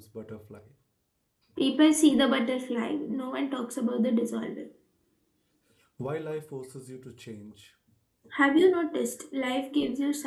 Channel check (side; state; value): both; identical; correlation 1.00